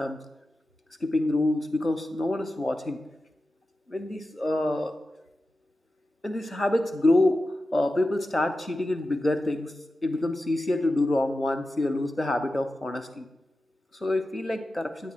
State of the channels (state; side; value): normal; both; correlation 0.92